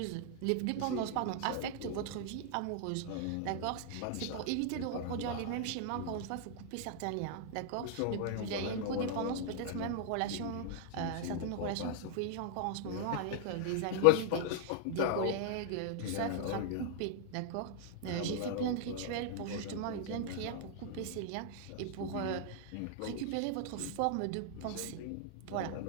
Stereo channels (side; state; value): both; different; correlation 0.00